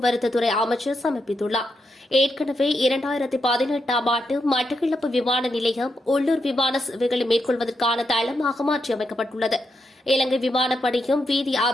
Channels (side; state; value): both; normal; correlation 0.83